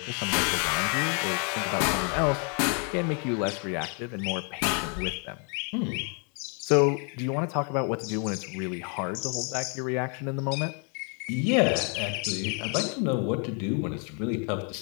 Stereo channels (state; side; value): quieter; right; 38.6 dB